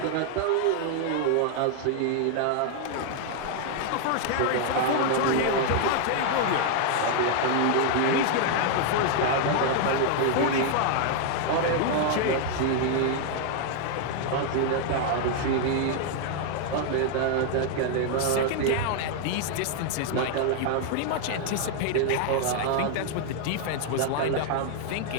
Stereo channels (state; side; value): different; both; correlation 0.00